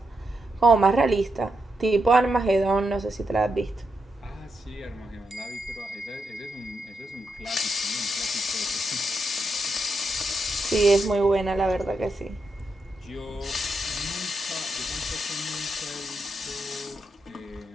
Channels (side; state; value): both; normal; correlation 0.84